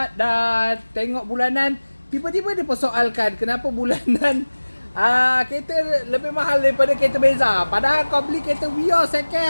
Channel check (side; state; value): both; inverted; correlation -1.00